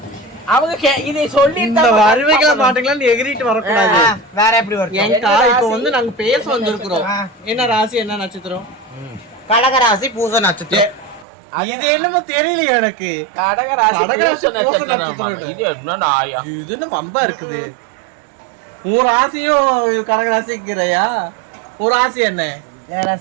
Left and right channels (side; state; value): left; drops out; at 11.2 s